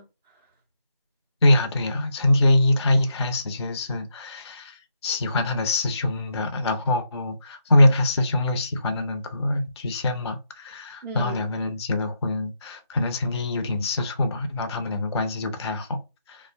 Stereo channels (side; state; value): both; inverted; correlation -0.80